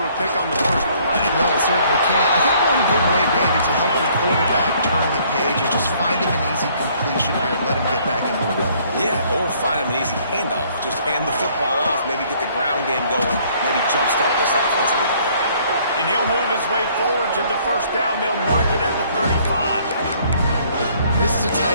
a pick on the first play. No, it certainly can't. I think one good way, David, to help your quarterback turn the page is just find him an easy completion here and let him get back into a rhythm. Yeah, or find him an easy handoff. Just hand the football off, maybe get the ground game going, maybe jumpstart this offense a little bit. And he'll move his way forward to the first down. They'll mark it at the 35. This is a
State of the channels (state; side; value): inverted; both; correlation -0.61